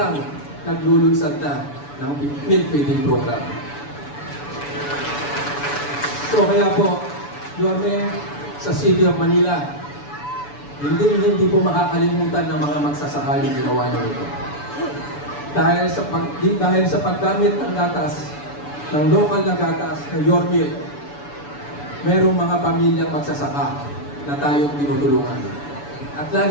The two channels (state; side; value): late; right; 7.0 ms